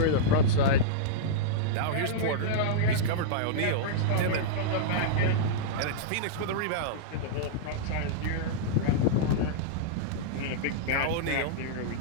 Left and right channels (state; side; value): different; both; correlation -0.03